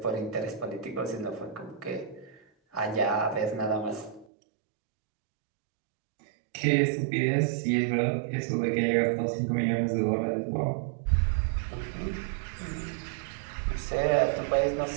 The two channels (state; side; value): drops out; left; at 4.2 s